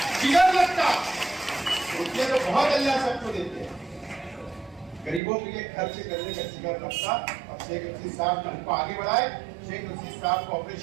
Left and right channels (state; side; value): drops out; left; at 5.2 s